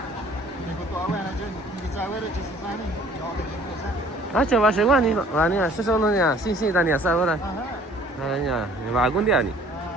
Ah, chaval, seguro ni no. Ah, ni, eso solo ni, sí, Dani, ¿sabes ahora? Ah, ya, ni va algún día ni.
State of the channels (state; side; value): normal; both; correlation 0.54